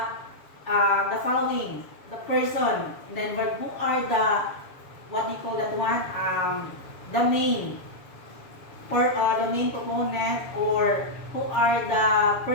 following? The person. And then who are the, what do you call that one? The main proponent, or who are the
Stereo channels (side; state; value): right; late; 7.1 ms